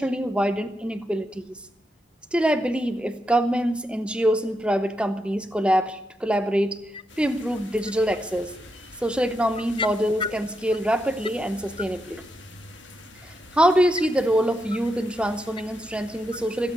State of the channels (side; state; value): both; normal; correlation 0.84